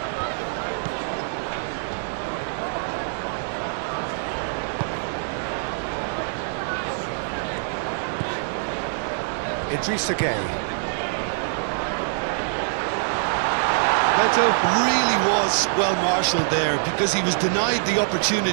Idrissa Gueye. Beto really was well marshalled there because he was denied the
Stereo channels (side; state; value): left; silent; digital silence